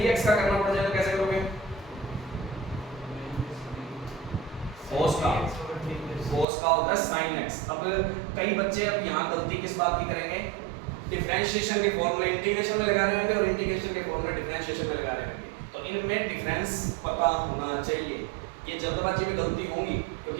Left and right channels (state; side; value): drops out; left; at 6.5 s